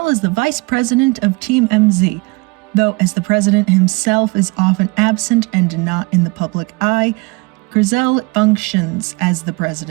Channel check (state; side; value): quieter; left; 26.7 dB